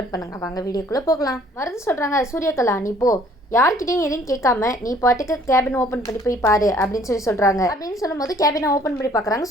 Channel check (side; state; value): both; normal; correlation 0.58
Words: பண்ணுங்கள். வாங்க வீடியோக்குள்ளே போகலாம். மருந்து சொல்கிறாங்க, சூரியகலா நீ போ, யார்கிட்டையும் எதையும் கேட்காம நீ பாட்டுக்கு கேபின் ஓப்பன் பண்ணி போய் பாரு அப்படின்னு சொல்கிறாங்க. அப்படின்னு சொல்லும்போது கேபினை ஓப்பன் பண்ணி பார்க்குறாங்க